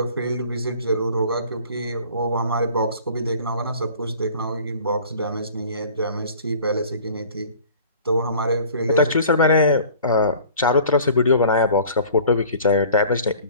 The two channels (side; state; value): both; inverted; correlation -0.47